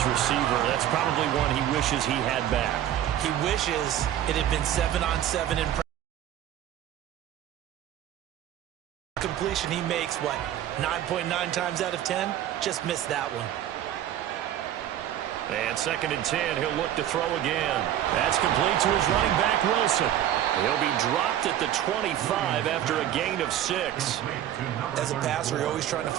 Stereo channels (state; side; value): quieter; left; 11.6 dB